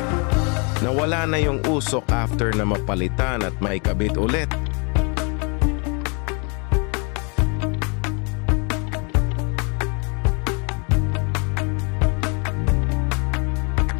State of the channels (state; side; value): quieter; right; 34.5 dB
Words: Nawala na yung usok after na mapalitan at maikabit ulit.